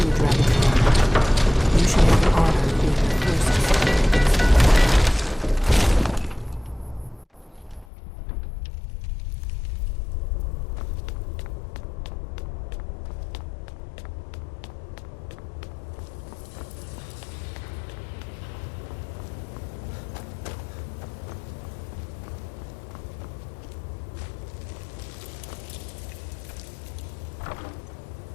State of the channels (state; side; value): drops out; right; at 7.9 s